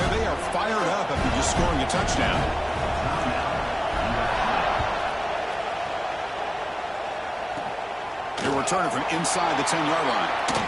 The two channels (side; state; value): both; identical; correlation 1.00